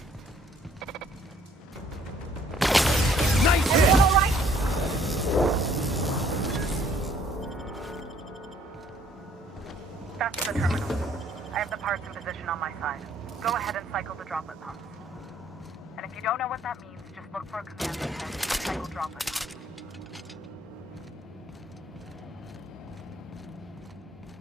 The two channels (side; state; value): both; normal; correlation 0.61